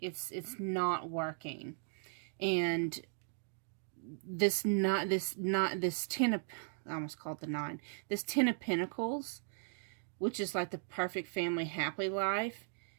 not working, and this ten of, I almost called it the 9. This 10 of Pentacles, which is like the perfect family happy life,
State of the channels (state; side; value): silent; left; digital silence